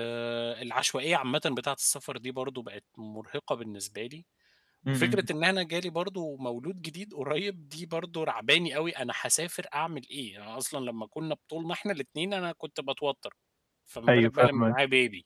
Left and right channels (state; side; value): identical; both; correlation 1.00